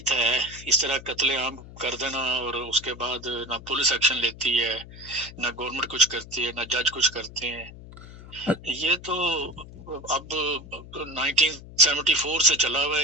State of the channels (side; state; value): left; noise; hum, 16 dB below the sound